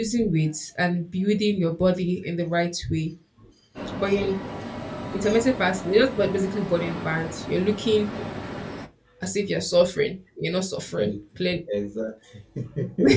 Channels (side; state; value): both; identical; correlation 1.00